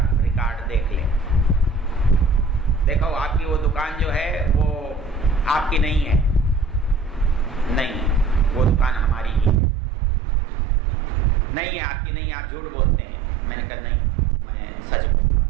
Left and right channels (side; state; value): left; drops out; at 9.6 s